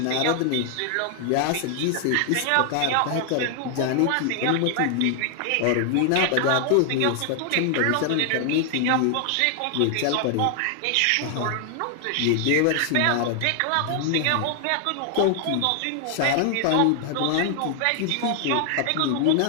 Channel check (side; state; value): both; different; correlation 0.00